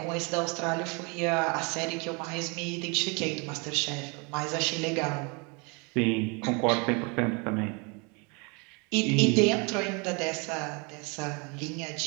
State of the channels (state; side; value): quieter; left; 31.1 dB